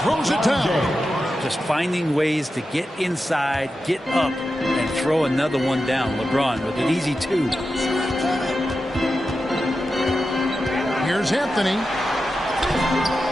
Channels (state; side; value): normal; both; correlation 0.91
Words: it down. Just finding ways to get inside, get up, and throw another one down. LeBron with an easy 2. Here's Anthony.